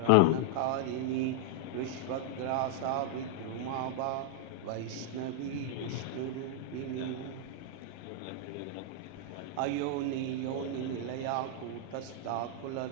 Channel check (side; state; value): both; different; correlation -0.01